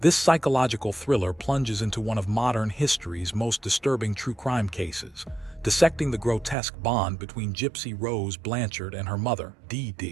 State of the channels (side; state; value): left; drops out; at 6.6 s